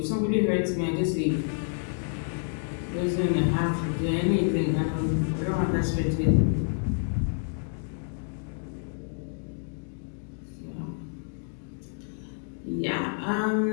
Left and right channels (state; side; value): silent; right; digital silence